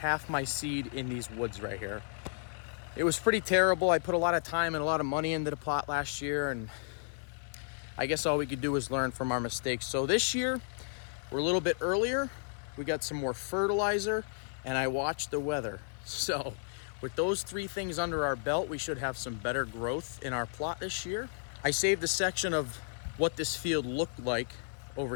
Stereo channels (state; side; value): silent; right; 56 dB below the other